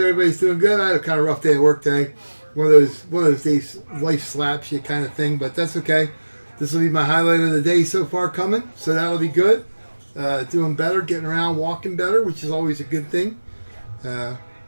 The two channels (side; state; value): both; inverted; correlation -1.00